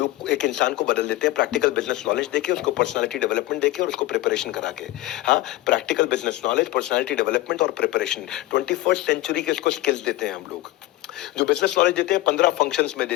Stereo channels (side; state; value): right; quieter; 17.1 dB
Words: एक इंसान को बदल देते हैं, प्रैक्टिकल बिजनेस नॉलेज देके, उसको पर्सनालिटी डेवलपमेंट देके और उसको प्रिपरेशन करा के। हाँ, practical business knowledge, personality development और प्रिपरेशन, 21st सेंचुरी के इसको स्किल्स देते हैं हम लोग। जो बिजनेस नॉलेज देते हैं 15 फंक्शंस में